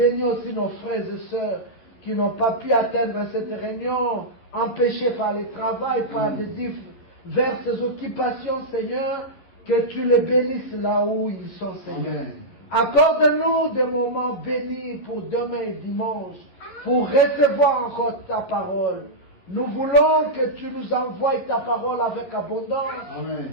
aussi nos frères et sœurs qui n'ont pas pu atteindre cette réunion, empêchés par le travail, par des diverses occupations, Seigneur, que tu les bénisses là où ils sont, Seigneur. Accorde-nous des moments bénis pour demain et dimanche, pour recevoir encore ta parole. Nous voulons que tu nous envoies ta parole avec abondance. Amen.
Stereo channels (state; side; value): late; right; 11 ms